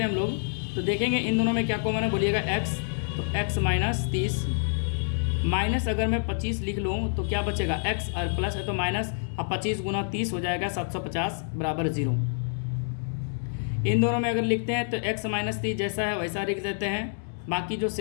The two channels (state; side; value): silent; right; digital silence